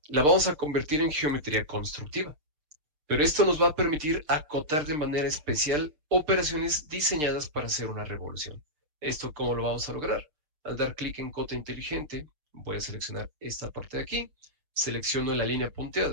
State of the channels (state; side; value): late; left; 6.7 ms